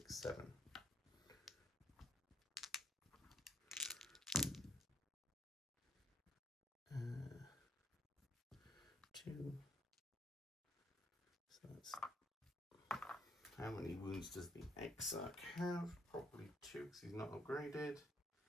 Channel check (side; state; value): both; normal; correlation 0.64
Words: 7. 2. So that's, how many wounds does the Exarch have? Probably 2 because he's not upgraded.